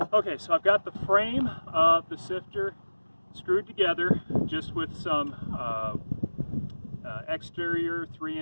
Okay, so I've got the frame of the sifter screwed together just with some exterior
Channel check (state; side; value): inverted; both; correlation -1.00